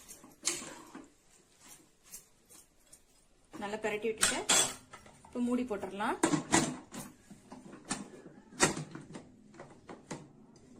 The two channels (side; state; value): both; identical; correlation 1.00